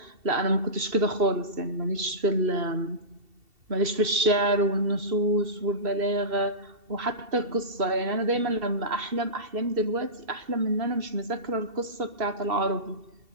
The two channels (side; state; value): left; late; 2.7 ms